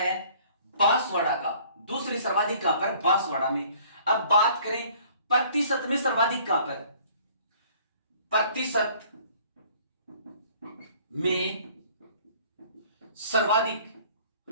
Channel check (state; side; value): inverted; both; correlation -0.56